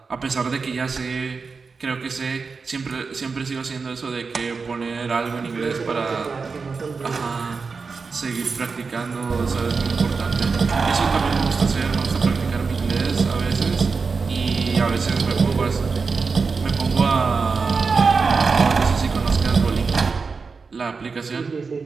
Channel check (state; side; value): quieter; left; 4.8 dB